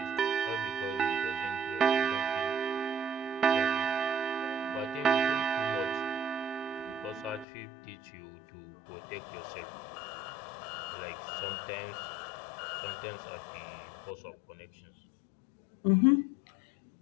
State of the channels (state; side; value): drops out; right; at 7.5 s